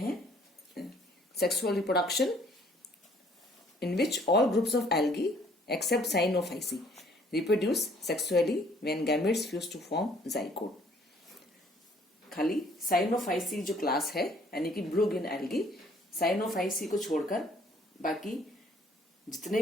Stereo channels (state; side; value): normal; both; correlation 0.60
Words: sexual reproduction in which all groups of algae except Cyanophyceae reproduce sexually when gametes fuse to form zygote। खाली Cyanophyceae जो क्लास है यानी कि ब्लू ग्रीन एल्गी, Cyanophyceae को छोड़कर बाकी जितने